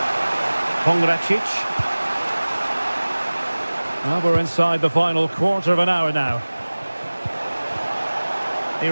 Pongracic. Well, we're inside the final quarter of an hour now. He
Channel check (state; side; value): inverted; both; correlation -1.00